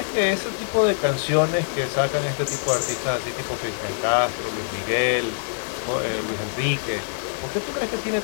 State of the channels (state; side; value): silent; right; digital silence